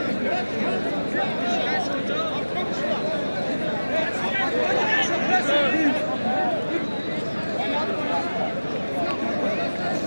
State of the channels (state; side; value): inverted; both; correlation -1.00